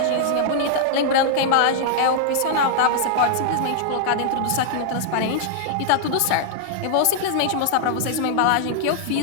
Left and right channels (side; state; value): both; different; correlation -0.01